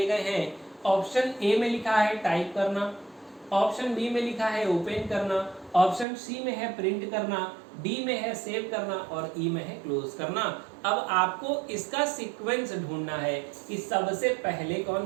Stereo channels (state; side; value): drops out; left; at 6.1 s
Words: गए हैं। ऑप्शन ए में लिखा है टाइप करना, ऑप्शन बी में लिखा है ओपन करना, ऑप्शन सी में है प्रिंट करना, डी में है सेव करना और ई में है क्लोज करना। अब आपको इसका सीक्वेंस ढूंढना है कि सबसे पहले कौन